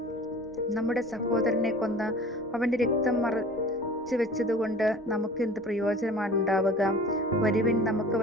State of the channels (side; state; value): both; normal; correlation 0.43